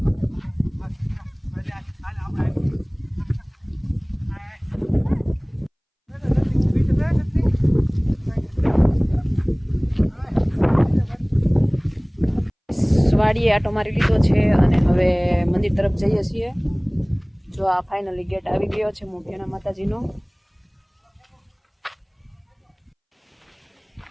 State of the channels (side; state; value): both; identical; correlation 1.00